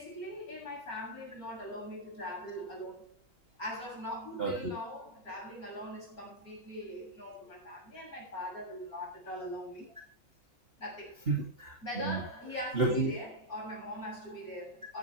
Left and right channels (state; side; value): normal; both; correlation -0.05